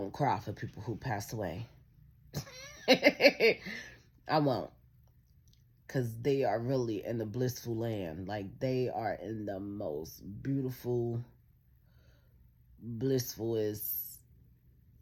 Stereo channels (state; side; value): identical; both; correlation 1.00